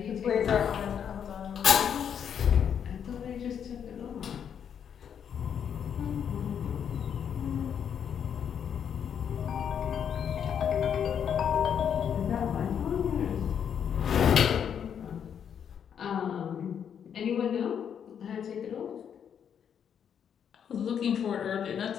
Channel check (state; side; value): quieter; right; 8.2 dB